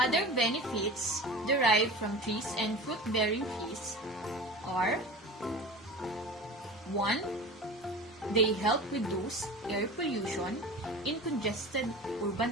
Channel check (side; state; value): both; normal; correlation 0.35